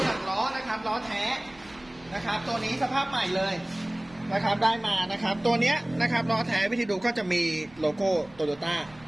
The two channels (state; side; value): noise; right; rumble, 25 dB below the sound